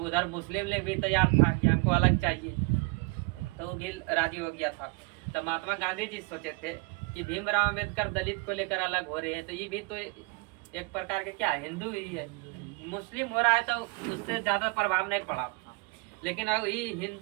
मुस्लिम लीग भी तैयार था कि हमको अलग चाहिए, तो वो भी राजी हो गया था। तो महात्मा गांधी जी सोचे थे कि भीमराव अम्बेडकर दलित को लेकर अलग हो रहे हैं, तो ये भी तो एक प्रकार के क्या हिंदू ही है, मुस्लिम हो रहा है तो उससे ज्यादा प्रभाव नहीं पड़ा था, लेकिन अब ये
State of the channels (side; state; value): left; quieter; 27.7 dB